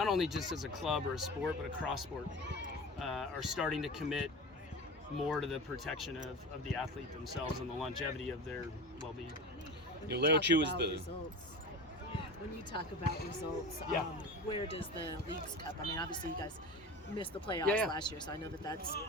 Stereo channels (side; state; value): both; normal; correlation 0.32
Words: only just as a club or a sport, but across sport, are starting to commit more to the protection of the athlete themselves and the longevity of their well-being. Leo Chu is the results. When you talk about results, where does the Leagues Cup? I mean, obviously you guys missed the playoffs last year, so I know that's